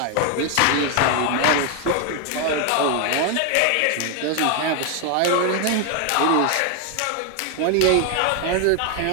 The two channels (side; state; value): both; different; correlation 0.01